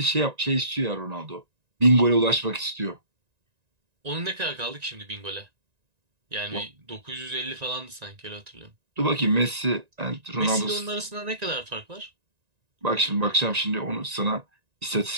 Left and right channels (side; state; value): left; late; 1.9 ms